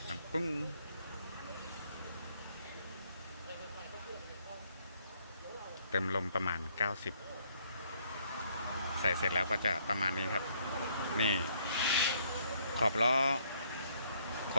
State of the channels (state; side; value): inverted; both; correlation -0.68